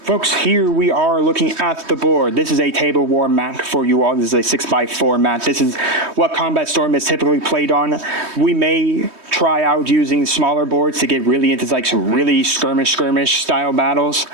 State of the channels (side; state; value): left; late; 3.2 ms